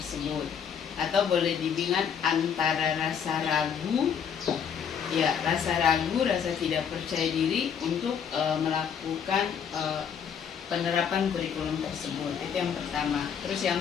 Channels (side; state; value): right; quieter; 7.5 dB